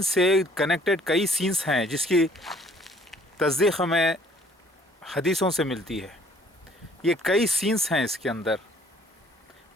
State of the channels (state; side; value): normal; both; correlation 0.58